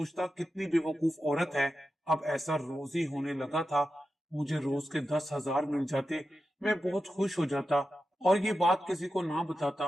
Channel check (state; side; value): normal; both; correlation 0.91